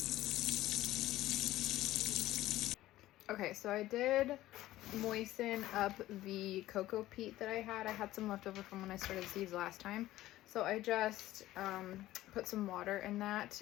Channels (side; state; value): right; quieter; 15.4 dB